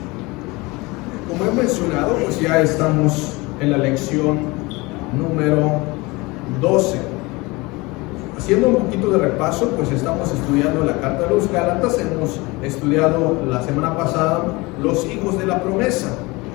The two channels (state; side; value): quieter; right; 23.8 dB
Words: Como he mencionado, pues ya estamos en la lección número 12. Haciendo un poquito de repaso, pues estamos estudiando la carta de los Gálatas. Hemos estudiado la semana pasada los hijos de la promesa.